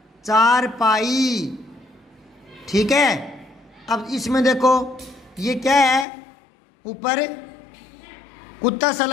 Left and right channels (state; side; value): drops out; right; at 6.1 s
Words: चारपाई, ठीक है। अब इसमें देखो ये क्या है, ऊपर कुत्ता सा